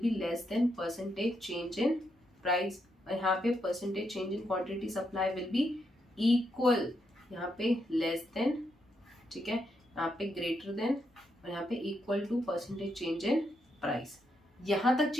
be less than percentage change in price, और यहाँ पे percentage change in quantity supply will be equal, यहाँ पे लेस देन, ठीक है, यहाँ पे ग्रेटर देन, और यहाँ पे equal to percentage change in price. यहाँ तक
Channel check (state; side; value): normal; both; correlation 0.80